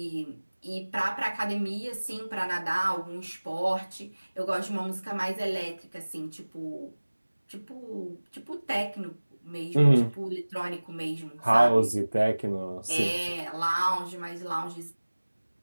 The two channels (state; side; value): inverted; both; correlation -1.00